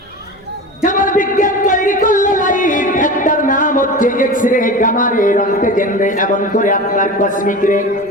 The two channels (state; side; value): noise; right; rumble, 29 dB below the sound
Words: যেমন বিজ্ঞান তৈরি করলো লাইট, একটার নাম হচ্ছে এক্স রে, গামা রে, রন্টগেন রে, এমন করে আপনার কসমিক রে।